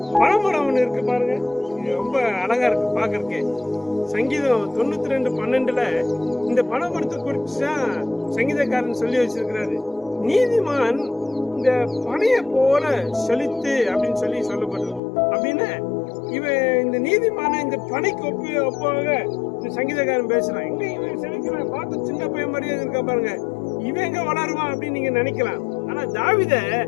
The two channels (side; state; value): right; drops out; at 15.0 s